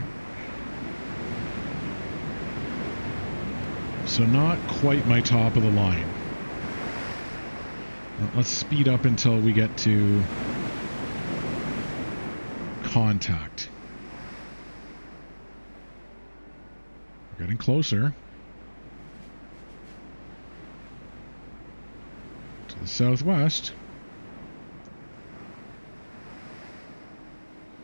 So not quite my top of the line. Let's speed up until we get to contact. We're getting closer. To the southwest.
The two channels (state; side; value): inverted; both; correlation -1.00